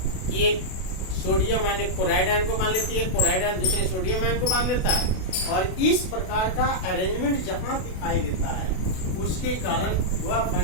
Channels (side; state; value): right; late; 32 ms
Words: कि एक सोडियम आयन एक क्लोराइड आयन को मान लेती है, क्लोराइड आयन दूसरे सोडियम आयन को मान लेता है, और इस प्रकार का अरेंजमेंट जहां दिखाई देता है उसके कारण वह